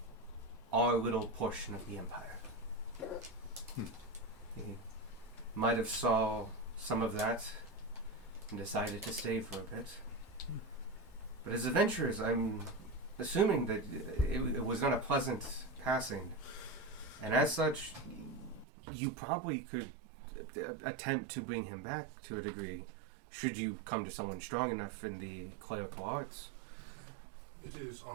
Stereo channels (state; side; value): drops out; left; at 18.7 s